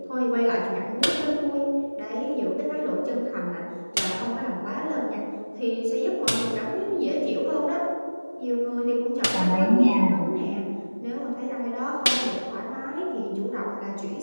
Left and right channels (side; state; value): both; inverted; correlation -1.00